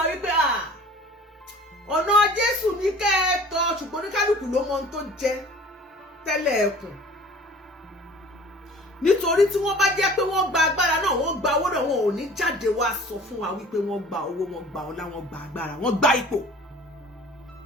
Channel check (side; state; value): both; normal; correlation 0.46